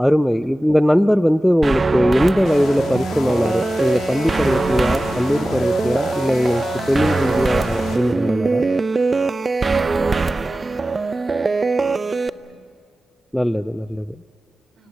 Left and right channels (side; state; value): both; normal; correlation 0.95